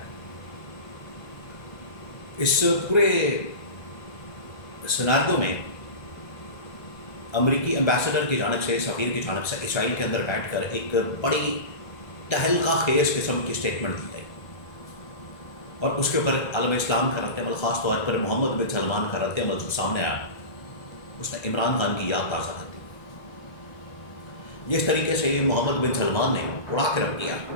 اس پورے سیناریو میں امریکی ایمبیسڈر کی جانب سے، سفیر کی جانب سے اسرائیل کے اندر بیٹھ کر ایک بڑی تہلکہ خیز قسم کی اسٹیٹمنٹ دی گئی، اور اس کے اوپر عالم اسلام کا رد عمل، خاص طور پر محمد بن سلمان کا رد عمل جو سامنے آیا، اس نے عمران خان کی یاد تازہ کر دی۔ جس طریقے سے محمد بن سلمان نے اڑا کے رکھ دیا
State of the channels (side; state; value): right; late; 1.3 ms